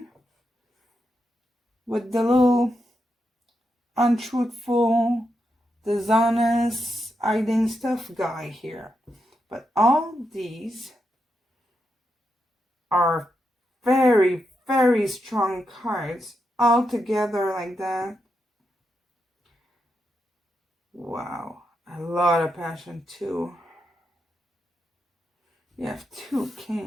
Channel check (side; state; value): both; normal; correlation 0.84